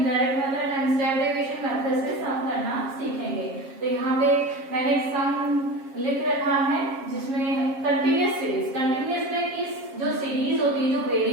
method and step derivation method से सम करना सीखेंगे। तो यहाँ पे मैंने सम लिख रखा है जिसमें कंटीन्यूअस सीरीज, कंटीन्यूअस में कि जो सीरीज होती है, जो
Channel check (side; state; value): left; late; 7.4 ms